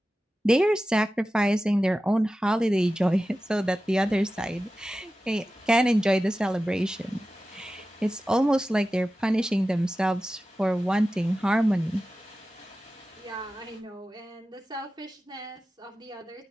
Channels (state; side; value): normal; both; correlation 0.94